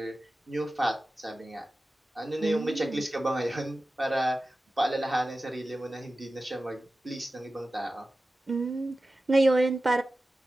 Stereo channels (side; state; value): both; normal; correlation 0.95